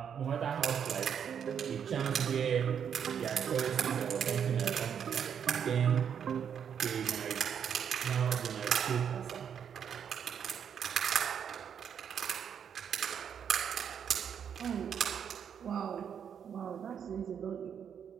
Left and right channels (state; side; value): quieter; left; 8.0 dB